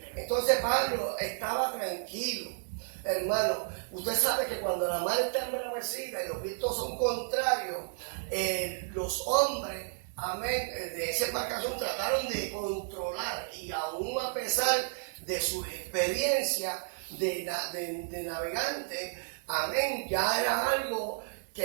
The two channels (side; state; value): left; silent; 56 dB below the other